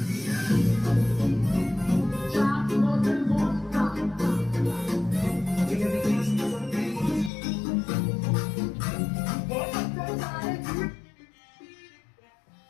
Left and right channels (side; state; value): right; drops out; at 7.3 s